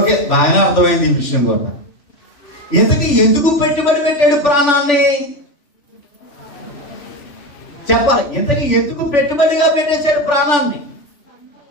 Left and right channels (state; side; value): late; right; 3.4 ms